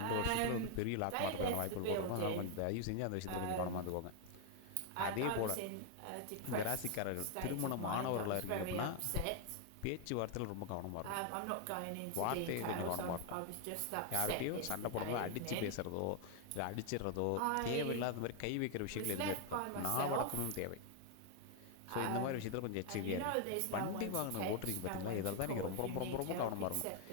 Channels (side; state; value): both; different; correlation 0.00